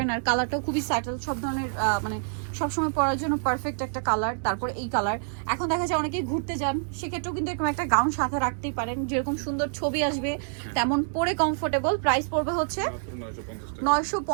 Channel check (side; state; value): left; silent; digital silence